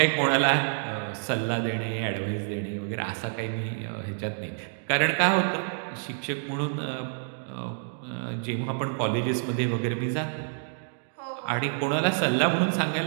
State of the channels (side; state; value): left; silent; digital silence